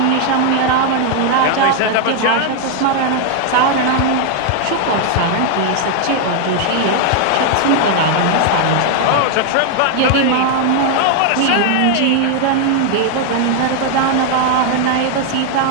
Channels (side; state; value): both; different; correlation 0.00